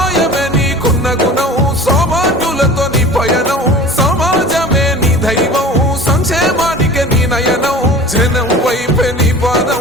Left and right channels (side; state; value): both; normal; correlation 0.40